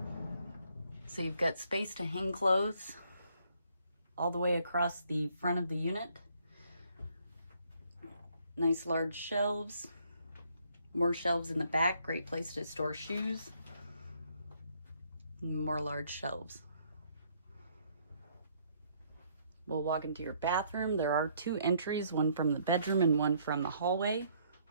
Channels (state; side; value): inverted; both; correlation -0.67